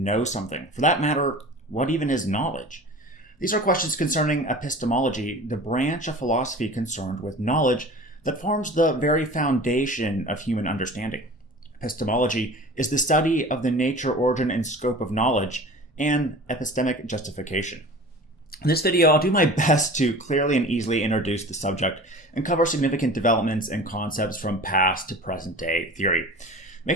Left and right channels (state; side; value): normal; both; correlation 0.39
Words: know something? For that matter, what even is knowledge? These are questions concerning epistemology, the branch of philosophy concerned with knowledge that forms the very foundation of human understanding. Epistemology is the study of the nature, origin, and scope of knowledge and epistemic justification. In this video, I'll do my best to clearly and easily introduce the subject and cover significant developments and concepts from past to present day theory. Make